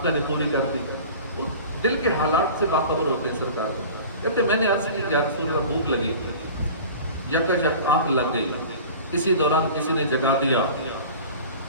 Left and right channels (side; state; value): both; inverted; correlation -0.40